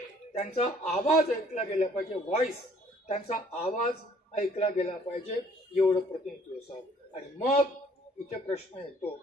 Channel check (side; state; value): both; normal; correlation 0.59